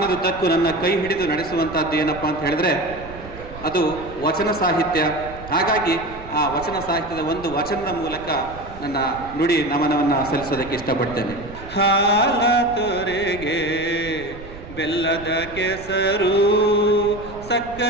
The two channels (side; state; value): right; noise; rumble, 15 dB below the sound